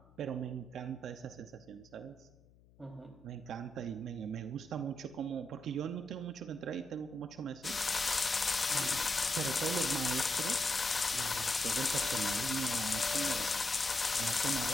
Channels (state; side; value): noise; left; hum, 27 dB below the sound